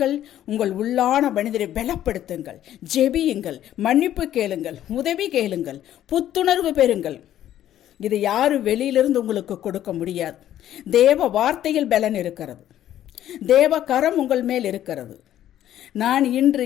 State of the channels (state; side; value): quieter; right; 11.9 dB